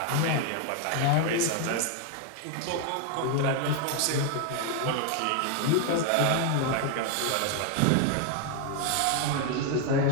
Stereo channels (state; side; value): different; both; correlation 0.00